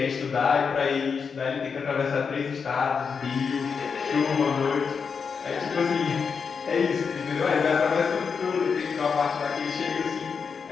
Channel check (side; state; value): right; quieter; 5.8 dB